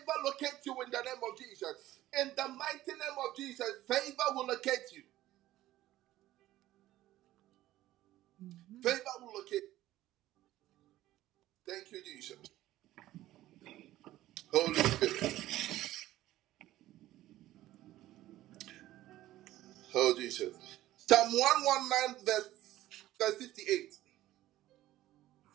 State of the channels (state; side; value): quieter; left; 15.0 dB